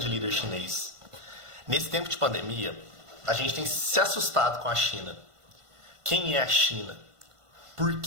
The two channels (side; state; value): left; late; 1.5 ms